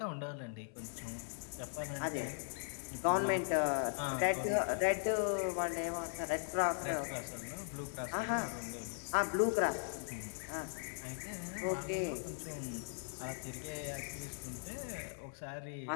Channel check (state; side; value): silent; right; 52 dB below the other